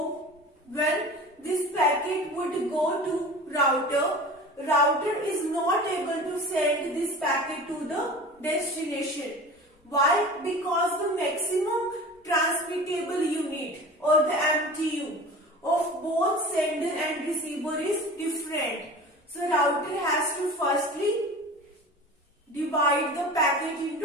would go to router is not able to send this packet to the destination. Why? Because the maximum transmittable unit or the MTU of both sender and receiver is different. So router has to firstly divide the packet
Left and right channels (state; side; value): normal; both; correlation 0.37